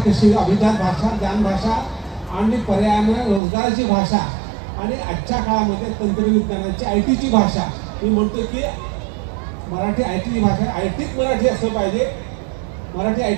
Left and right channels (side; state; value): left; drops out; at 3.4 s